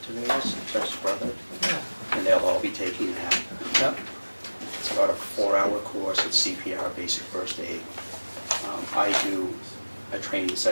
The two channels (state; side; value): inverted; both; correlation -1.00